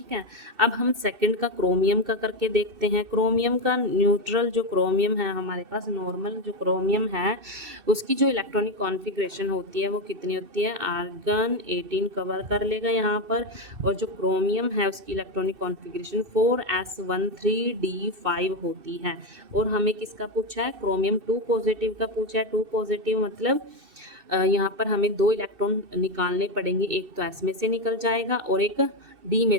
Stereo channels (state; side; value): late; left; 2.7 ms